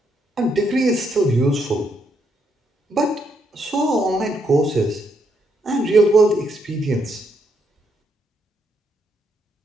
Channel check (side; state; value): both; normal; correlation 0.76